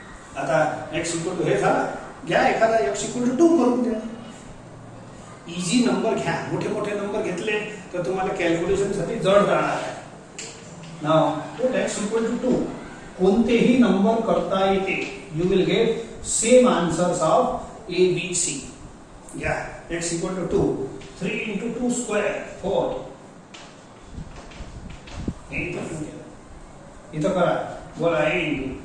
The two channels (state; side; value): identical; both; correlation 1.00